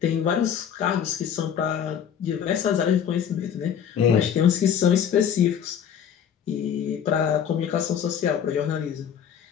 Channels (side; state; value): right; quieter; 8.4 dB